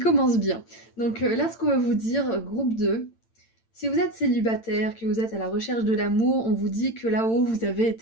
bien. Donc là, ce qu'on va vous dire, groupe 2, si vous êtes célibataire, que vous êtes à la recherche de l'amour, on vous dit que là-haut, vous avez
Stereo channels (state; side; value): late; right; 8.9 ms